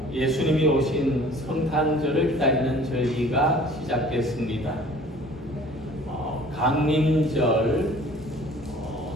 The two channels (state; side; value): normal; both; correlation 0.50